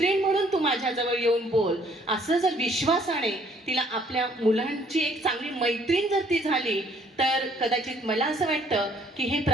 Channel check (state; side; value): normal; both; correlation 0.62